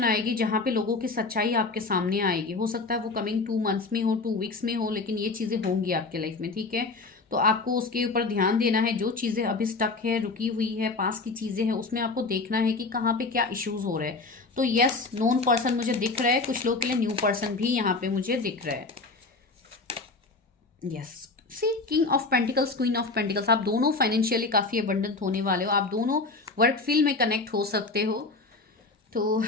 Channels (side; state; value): right; quieter; 3.8 dB